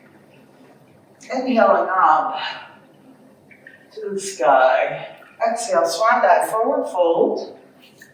Inhaling up to the sky. Exhale, swan dive, forward fold.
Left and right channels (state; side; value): identical; both; correlation 1.00